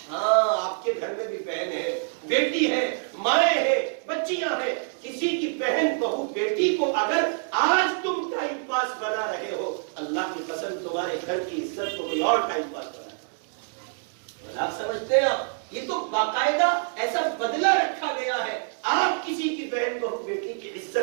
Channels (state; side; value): silent; left; 61 dB below the other